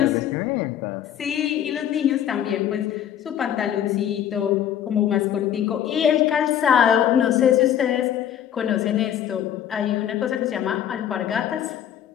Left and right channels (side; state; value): right; quieter; 10.1 dB